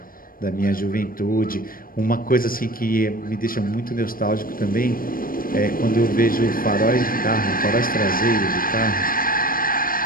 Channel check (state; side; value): late; right; 0.41 ms